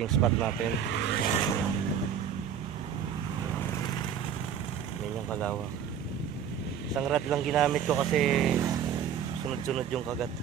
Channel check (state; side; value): quieter; left; 8.4 dB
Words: spot natin. Yan yung kalawak. Isang rod lang ginamit ko kasi sunod-sunod yung kagat.